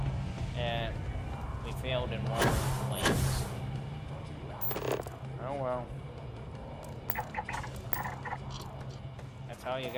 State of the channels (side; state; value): both; identical; correlation 1.00